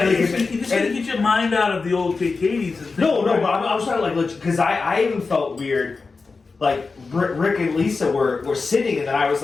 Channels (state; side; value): quieter; right; 4.3 dB